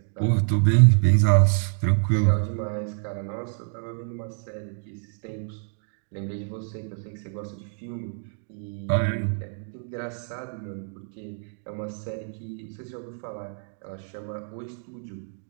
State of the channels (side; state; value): left; silent; 60 dB below the other